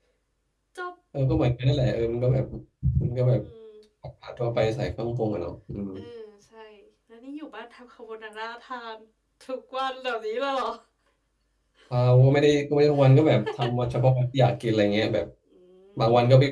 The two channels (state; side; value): identical; both; correlation 1.00